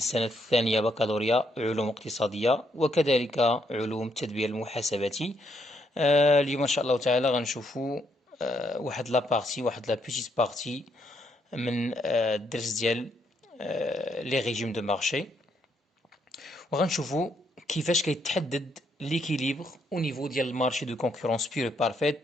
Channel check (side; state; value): both; normal; correlation 0.74